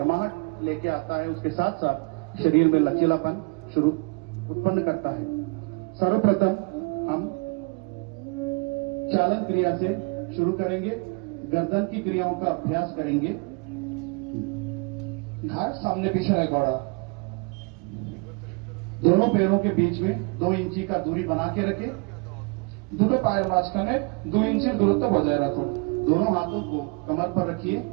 लेके आता है। उसके साथ साथ शरीर में लचीलापन उत्पन्न करता है। सर्वप्रथम हम चालन क्रिया से शुरू करेंगे। गर्दन की क्रियाओं का अभ्यास करेंगे। ঘাড় সামনে পিছনে করা। दोनों पैरों के बीच में 2 इंची का दूरी बना के रखें। দুটো পায়ের মাঝখানে 2 ইঞ্চির দূরত্ব বজায় রাখুন। दोनों हाथों को कमर पर रखिए।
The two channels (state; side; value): quieter; left; 31.8 dB